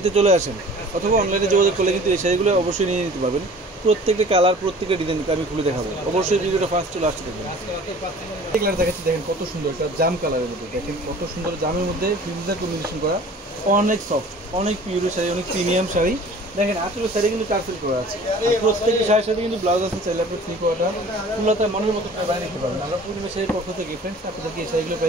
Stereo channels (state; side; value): normal; both; correlation 0.46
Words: চলে আসেন, অথবা অনলাইনে যোগাযোগ করলে কিন্তু এই শাড়িগুলো অবশ্যই নিয়ে নিতে পারবেন। প্রত্যেকটা কালার, প্রত্যেকটা ডিজাইন আমি খুলে দেখাবো, অবশ্যই ভিডিওটা ফার্স্ট চলে আসতে দেখবেন। কালার দেখাচ্ছি, দেখেন কত সুন্দর একটা জাম কালারের মধ্যে, দেখেন কত সুন্দর জামের মধ্যে ফিউজার কম্বিনেশন করা, অনেক সফট, অনেক পিওরের শাড়ি, অনেক প্রিমিয়াম শাড়ি। দেখেন আঁচলের শাড়ি কিন্তু টার্সেল করা আছে, প্রত্যেকটা শাড়ির সাথে কিন্তু ব্লাউজ আছে। চাইলে আপনি থ্রি কোয়ার্টার ফুলতা মনের মতো বাইরে নিতে পারবেন। আমরা পূর্ণিমা শাড়ির পক্ষ থেকে ফ্রেন্ডস আপনাদেরকে এই শাড়িগুলো